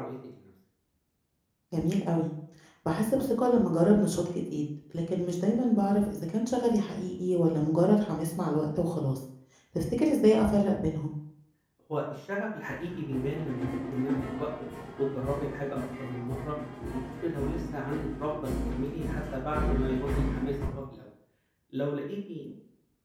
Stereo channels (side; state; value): both; identical; correlation 1.00